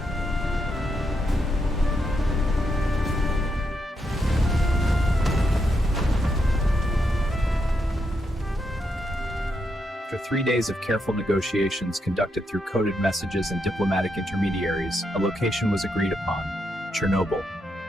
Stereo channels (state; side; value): normal; both; correlation 0.81